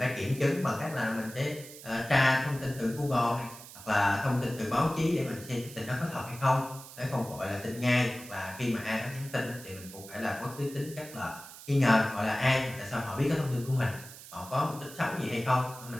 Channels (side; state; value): right; noise; hiss, 16 dB below the sound